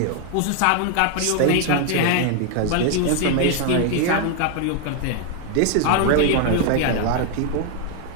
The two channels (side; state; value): both; different; correlation 0.00